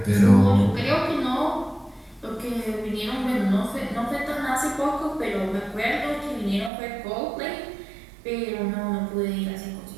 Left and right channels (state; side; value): drops out; left; at 6.7 s